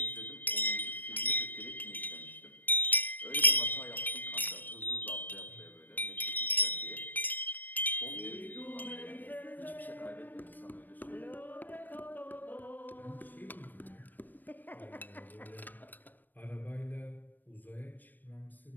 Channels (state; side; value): late; right; 0.089 ms